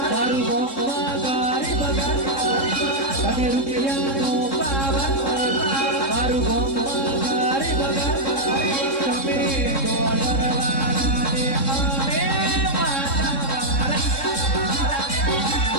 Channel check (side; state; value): right; late; 3.7 ms